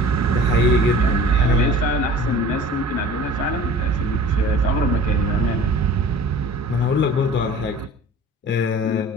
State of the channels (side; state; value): both; normal; correlation 0.44